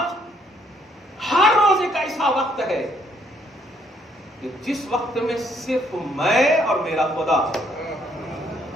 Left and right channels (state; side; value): normal; both; correlation 0.68